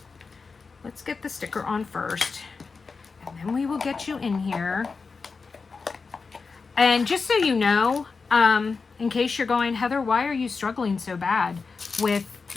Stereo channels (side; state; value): right; quieter; 4.7 dB